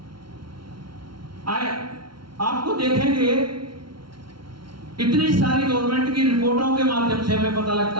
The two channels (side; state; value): left; late; 0.73 ms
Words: आपको देखेंगे इतनी सारी गवर्नमेंट की रिपोर्टों के माध्यम से हमें पता